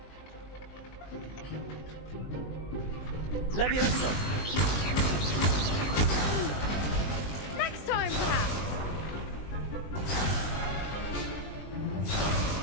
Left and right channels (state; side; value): late; right; 20 ms